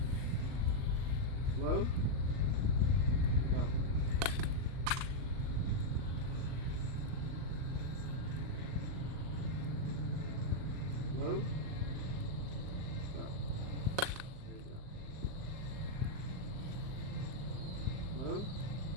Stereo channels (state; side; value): late; left; 39 ms